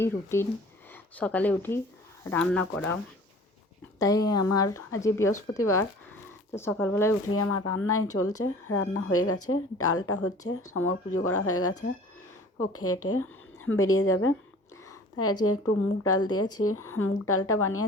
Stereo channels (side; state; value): both; normal; correlation 0.46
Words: রুটিন। সকালে উঠি রান্না করা, তাই আমার আজ বৃহস্পতিবার, তো সকালবেলায় উঠেই আমার রান্নাই চলছে। রান্না হয়ে গেছে, ডালটা হচ্ছে, সমর পুজো করা হয়ে গেছে, ও খেয়ে বেরিয়ে যাবে। তাই আজকে একটু মুগ ডাল দিয়েছি, মুগ ডালটা